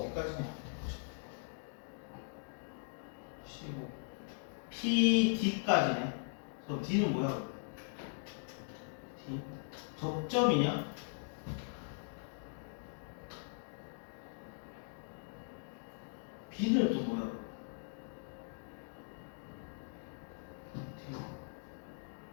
15 PD까지네. 그럼 D는 뭐야? D 접점이냐? B는 또 뭐야?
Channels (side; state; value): right; silent; digital silence